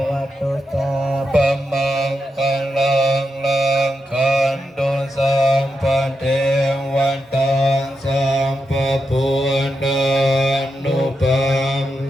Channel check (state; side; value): normal; both; correlation 0.86